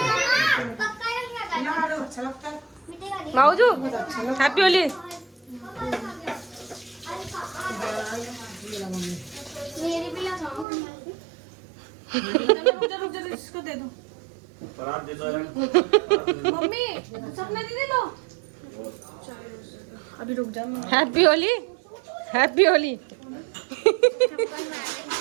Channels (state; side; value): drops out; left; at 10.7 s